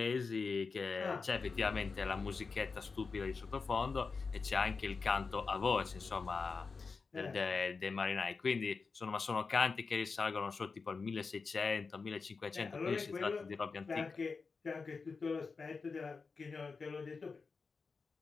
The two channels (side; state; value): right; quieter; 4.7 dB